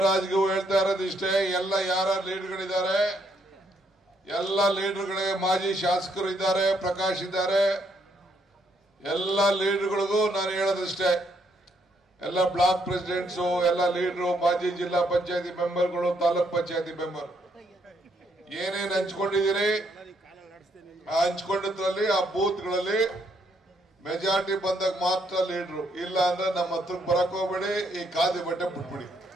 ಹೇಳ್ತಾ ಇರೋದು ಇಷ್ಟೇ. ಎಲ್ಲ ಯಾರ ಲೀಡರ್ಗಳಿದ್ದಾರೆ, ಎಲ್ಲ ಲೀಡರ್ಗಳಿಗೆ ಮಾಜಿ ಶಾಸಕರು ಇದ್ದಾರೆ, ಪ್ರಕಾಶ್ ಇದ್ದಾರೆ, ಎಲ್ಲ ಲೀಡರ್ಗಳಿಗೂ ನಾನು ಹೇಳೋದಿಷ್ಟೇ. ಎಲ್ಲ ಬ್ಲಾಕ್ ಪ್ರೆಸಿಡೆಂಟ್ಸು, ಎಲ್ಲ ಲೀಡರು, ಮಾಜಿ ಜಿಲ್ಲಾ ಪಂಚಾಯತಿ ಮೆಂಬರ್ಗಳು, ತಾಲೂಕ್ ಪಂಚಾಯತಿ ಮೆಂಬರ್ ಏನೇನು ಹಂಚ್ಕೊಂಡಿದ್ದೀರಿ ಆ ಹಂಚ್ಕೊಂಡಿದ್ರಲ್ಲಿ ಆ ಬೂತ್ಗಳಲ್ಲಿ ಮೆಜಾರಿಟಿ ಬಂದಾಗ ಮಾತ್ರ ಲೀಡರು, ಇಲ್ಲ ಅಂದ್ರೆ ನಮ್ಮ ಹತ್ರಕ್ಕೆ ಬರಕ್ ಹೋಗ್ಬೇಡಿ, ಈ ಖಾದಿ ಬಟ್ಟೆ ಬಿಟ್ಬಿಡಿ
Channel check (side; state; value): both; normal; correlation 0.73